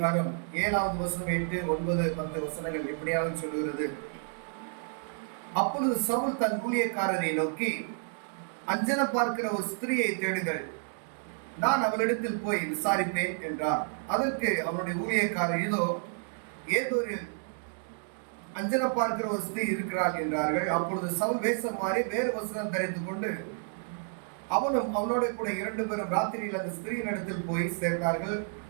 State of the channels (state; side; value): silent; left; 57 dB below the other